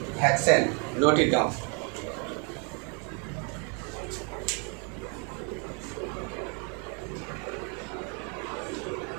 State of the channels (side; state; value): left; quieter; 35.8 dB